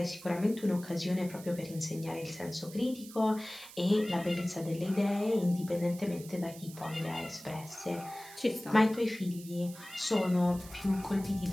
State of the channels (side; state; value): right; noise; hiss, 17 dB below the sound